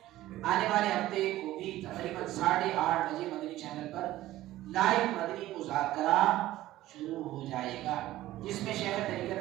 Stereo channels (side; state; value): left; quieter; 15.4 dB